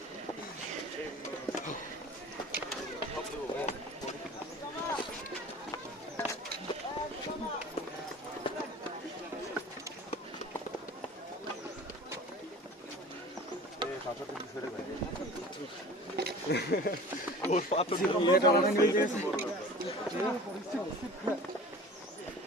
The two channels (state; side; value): normal; both; correlation 0.41